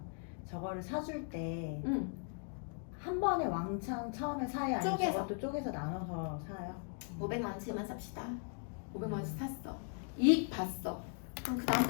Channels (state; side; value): silent; right; 52 dB below the other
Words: 저거를 사줄 때 응. 한 번에 왕창 처음에 사요? 아니면 쪼개서. 저것도 쪼개서 나눠서 사요? 500만 원치만 삽시다. 500만 원치 샀어. 이익 봤어. 그럼 그 다음